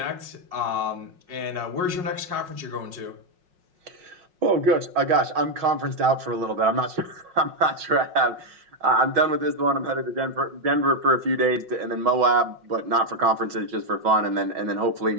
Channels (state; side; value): late; left; 5.5 ms